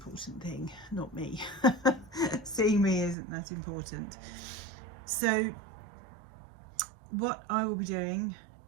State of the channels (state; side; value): drops out; left; at 3.2 s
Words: thing, not me. Seeing me isn't that important. So what I will be doing